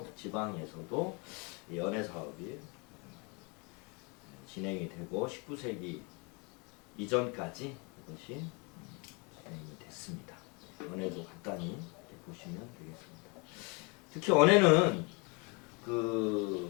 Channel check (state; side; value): quieter; right; 30.6 dB